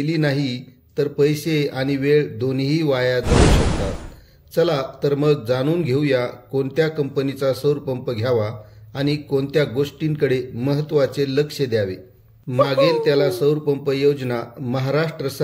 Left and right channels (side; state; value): both; identical; correlation 1.00